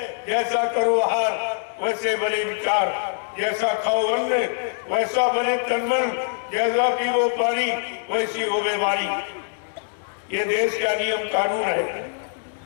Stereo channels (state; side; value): silent; right; digital silence